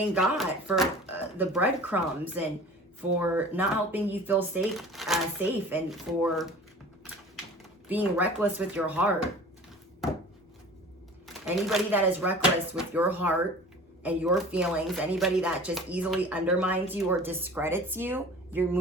got for the breadcrumbs and for not helping you feel safe and for being reckless with your heart. Anybody that is reckless with your heart and your feelings, anybody that just easily undermines you or discredits you, you're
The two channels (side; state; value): both; normal; correlation 0.42